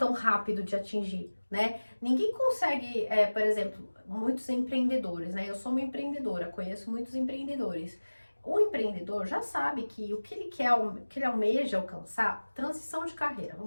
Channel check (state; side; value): inverted; both; correlation -1.00